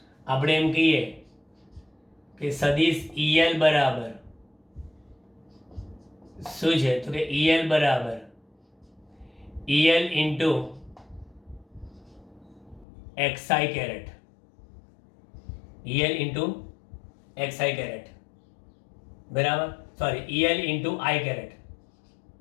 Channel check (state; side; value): drops out; right; at 12.9 s